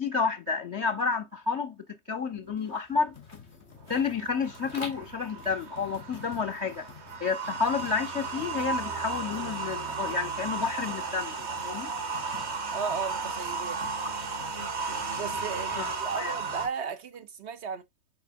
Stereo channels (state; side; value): late; left; 3.2 ms